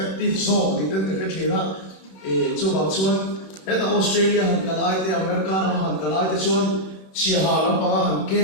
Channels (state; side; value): late; right; 31 ms